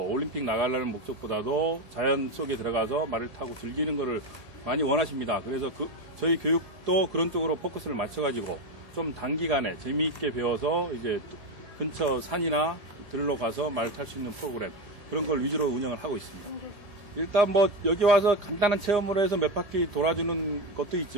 나가려는 목적보다도 자연 속에 들어가서 말을 타고 즐기는 거를 많이 원하십니다. 그래서 저희 교육도 그런 쪽으로 포커스를 맞춰가지고 좀 단기간에 재미있게 배워서 이제 근처 산이나 들로 가서 말 탈 수 있는 프로그램, 그런 걸 위주로 운영을 하고 있습니다. 일단 여기 와서 간단한 체험으로 해서 몇 바퀴 돌아주는 것도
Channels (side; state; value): left; late; 1.8 ms